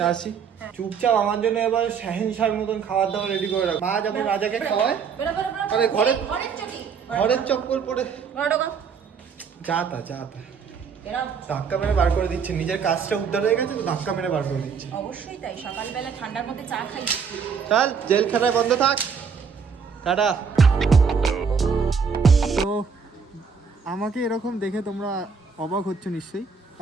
আসি। চুপচাপ আমার জন্য এবার শাহেনশার মতন খাবার দাবার রেডি করে রাখ। মা যেমন রাজাকে খাওয়ায়, আরে ঘরের চপ্পল পরে যা তা ধাক্কা মেরে বার করে দিচ্ছে। নিজের কাজটা উদ্ধার হয়ে গেছে তো ধাক্কা মেরে বার করে দিচ্ছে। অবশ্যই তাই, সকালবেলা ঠান্ডার মধ্যে চা খাই। চল জেলখানায় বন্ধ থাক, টাটা। তো আমাকে এরকম দেখে তোমরা অবাক হচ্ছ নিশ্চয়ই।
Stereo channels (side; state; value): left; quieter; 6.0 dB